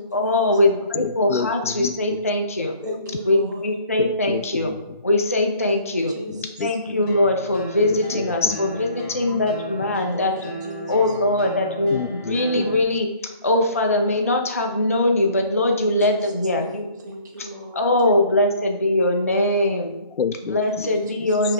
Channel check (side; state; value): both; inverted; correlation -0.55